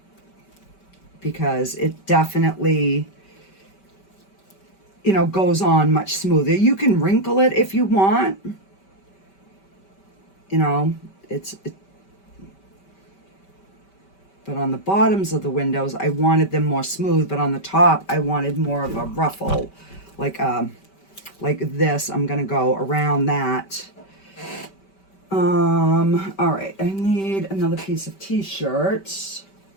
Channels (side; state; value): right; late; 5.2 ms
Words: because it definitely, you know, goes on much smoother. You can wrinkle it if you want, you know, but on the bottoms of the windows, I wanted them more smooth, but on the top, I wanted more of a ruffle, like this. I'm gonna go around that. All right, I need another piece of t-shirt.